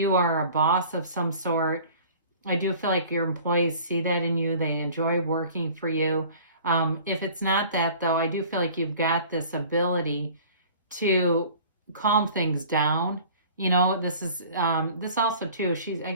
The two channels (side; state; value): both; inverted; correlation -0.46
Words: are a boss of some sort, I do feel like your employees see that in you. They enjoy working for you. If it's not that, though, I do feel like you've got this ability to calm things down. You know, this is this also too, I